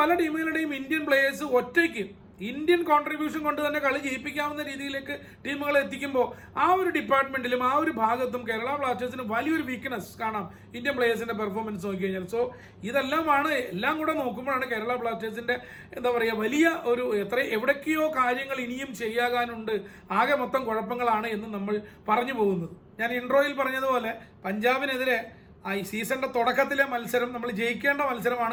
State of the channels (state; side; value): identical; both; correlation 1.00